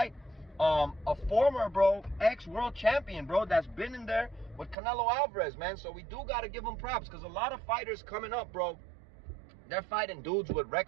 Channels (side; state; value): left; drops out; at 4.8 s